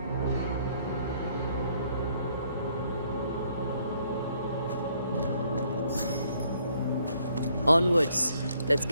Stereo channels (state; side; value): inverted; both; correlation -0.68